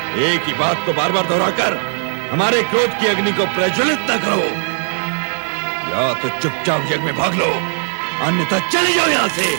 एक ही बात को बार बार दोहराकर हमारे क्रोध की अग्नि को प्रज्वलित न करो। या तो चुपचाप यज्ञ में भाग लो, अन्यथा चले जाओ यहाँ से,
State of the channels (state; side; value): silent; left; digital silence